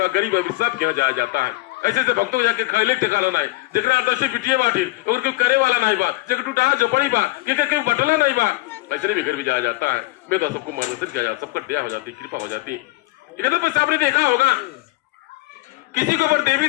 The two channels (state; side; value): quieter; right; 20.9 dB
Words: गरीब अभिशाप किया जाया जाता है। ऐसे से भक्तों जाके खैले ठिकाना नहीं, जगह आदर्शी पिटिए बाटी और कोई करे वाला नहीं बा, जगह टूटा झोपड़ी बा, क्योंकि बटला नहीं बा, ऐसे भी घर भी जाया जाता है। मैं तो सबको मार्गदर्शन किया जाता, सबका दया हो जाती, कृपा हो जाती। इधर पर आपने देखा होगा किसी के ऊपर देवी